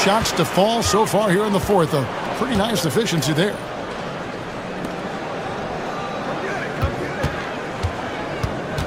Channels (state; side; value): identical; both; correlation 1.00